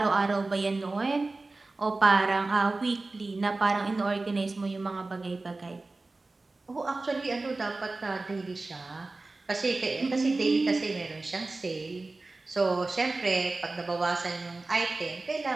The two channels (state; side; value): quieter; left; 3.3 dB